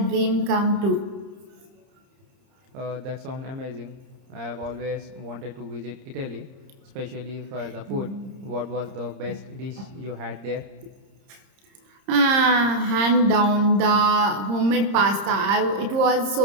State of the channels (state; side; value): late; left; 30 ms